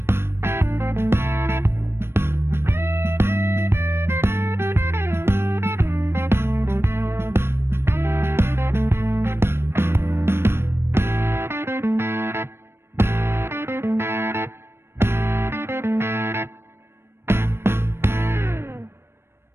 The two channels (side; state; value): left; late; 0.12 ms